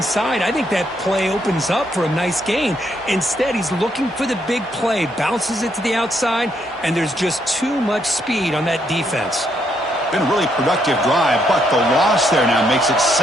I think that play opens up for a nice gain. Instead, he's looking for the big play, bounces it to the outside, and there's just too much speed on that defense. Been a really productive drive, but the loss there now makes it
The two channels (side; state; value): both; normal; correlation 0.74